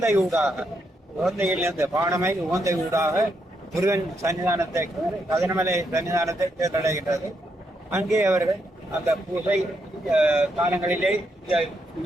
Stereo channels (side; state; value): both; normal; correlation 0.79